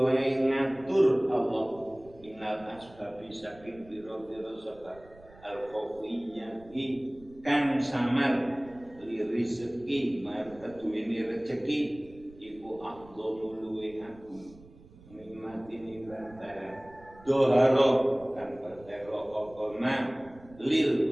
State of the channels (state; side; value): noise; right; rumble, 23 dB below the sound